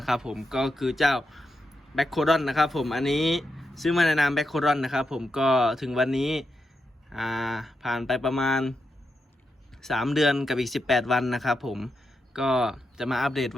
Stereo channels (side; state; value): both; normal; correlation 0.85